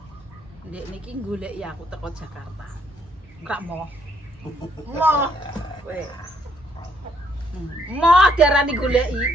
Dekne ki goleki aku teko Jakarta. Enggak mau. Mau. Kowe. Mau diarani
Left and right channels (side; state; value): both; normal; correlation 0.69